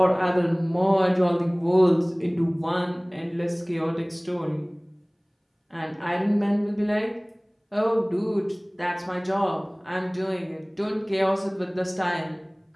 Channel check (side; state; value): both; identical; correlation 1.00